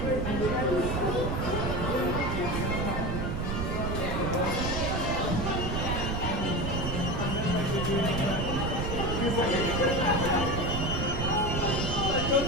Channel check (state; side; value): noise; right; rumble, 1 dB below the sound